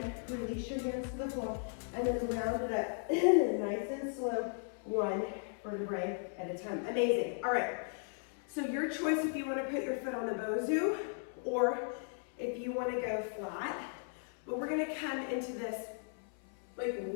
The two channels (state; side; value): silent; right; 53 dB below the other